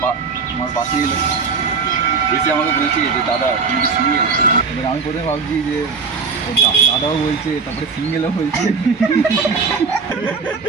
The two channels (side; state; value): left; quieter; 5.1 dB